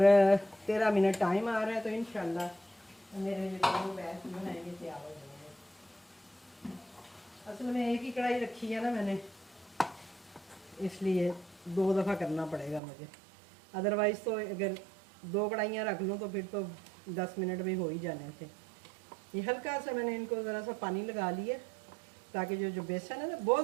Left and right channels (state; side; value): drops out; left; at 12.8 s